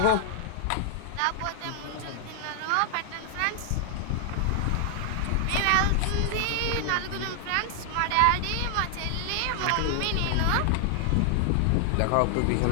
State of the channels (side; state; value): both; different; correlation 0.00